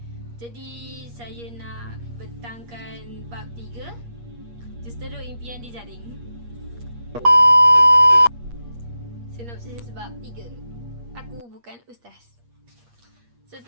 Jadi saya nak bentangkan bab 3, Justeru Impian di Jaring. Sinopsis bab 3. Aku bukan ustaz.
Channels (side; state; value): left; late; 8.5 ms